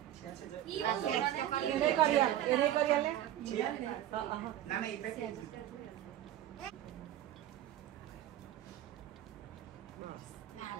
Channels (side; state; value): left; quieter; 12.4 dB